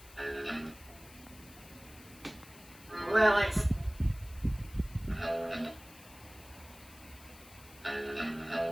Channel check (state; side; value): noise; left; hiss, 20 dB below the sound